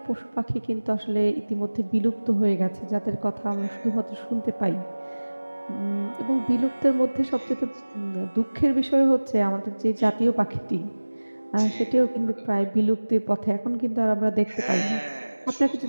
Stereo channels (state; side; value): inverted; both; correlation -1.00